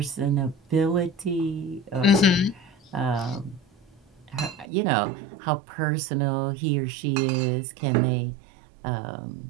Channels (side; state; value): left; drops out; at 4.7 s